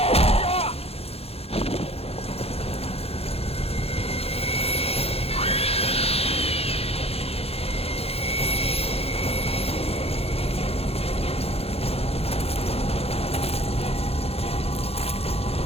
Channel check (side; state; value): right; late; 0.29 ms